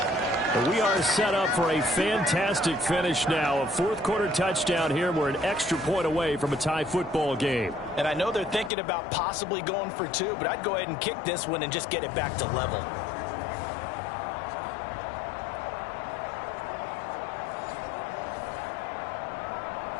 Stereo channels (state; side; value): drops out; right; at 8.7 s